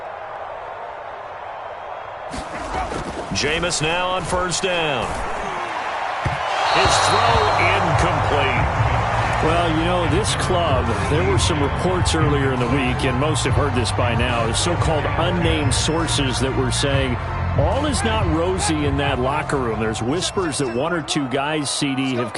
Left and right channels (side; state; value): both; identical; correlation 1.00